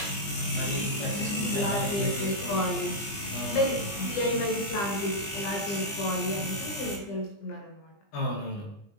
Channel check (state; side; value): late; right; 20 ms